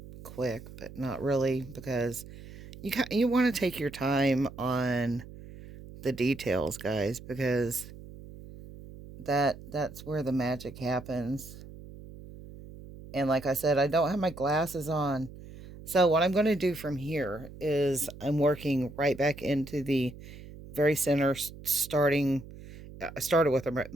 quick, but not really, because you want to take your time on the details, guys, because that's where the magic happens. And like I said, I don't have my glasses on. So what I'm going to do from here is I'm working right back into the very center, starting. I started with a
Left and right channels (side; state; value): right; noise; hum, 16 dB below the sound